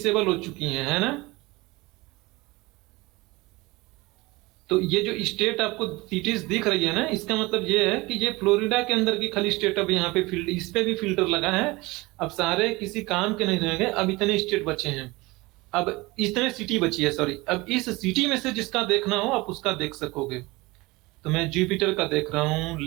हो चुकी हैं, है ना। तो ये जो स्टेट आपको सिटीज दिख रही है ना, इसका मतलब ये है कि ये फ्लोरिडा के अंदर की खाली स्टेट अब यहाँ पे फिल्ड, इस पे भी फिल्टर लगा है। अब सारे किसी काम के नहीं रह गए, अब इतने स्टेट बचे हैं, अब इतने सिटी बची है, सॉरी। अब इस सिटी में से जिसका देखना हो आप उसका देख सकोगे। तो मैं जुपिटर का देख रहा हूँ,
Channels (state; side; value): quieter; left; 22.3 dB